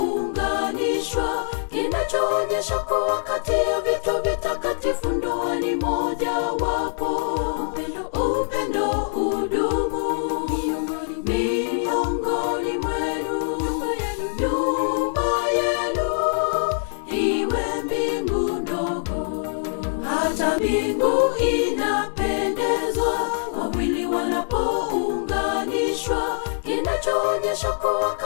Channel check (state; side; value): silent; right; digital silence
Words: kinachoonyesha kuwa kati ya vitu vitakatifu ndoa ni moja wapo. Upendo udumu miongoni mwenu, nyumba yenu iwe mbingu ndogo. Hata mbingu inapendezwa wawili wanapounganishwa, kinachoonyesha kuwa